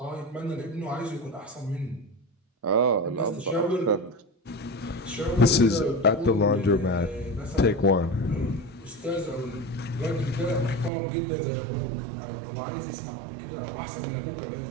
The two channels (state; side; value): drops out; left; at 10.9 s